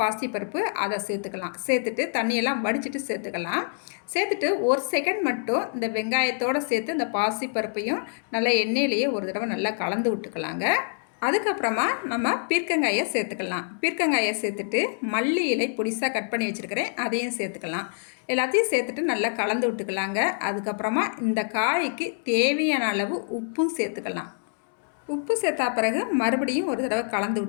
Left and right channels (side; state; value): right; silent; digital silence